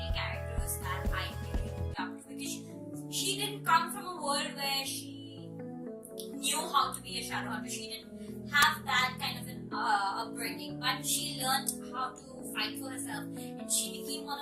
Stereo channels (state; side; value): identical; both; correlation 1.00